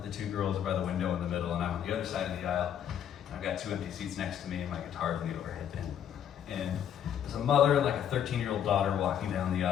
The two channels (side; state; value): right; quieter; 9.4 dB